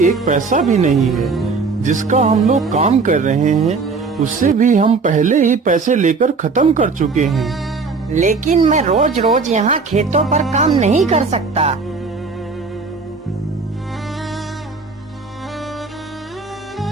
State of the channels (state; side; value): quieter; left; 4.5 dB